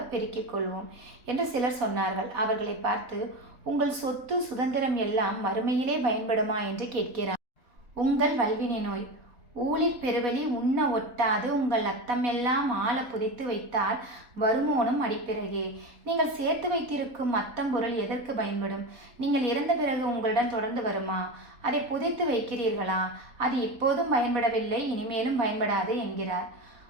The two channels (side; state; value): left; late; 4.1 ms